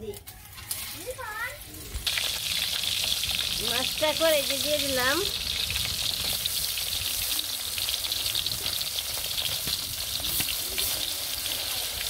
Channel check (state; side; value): identical; both; correlation 1.00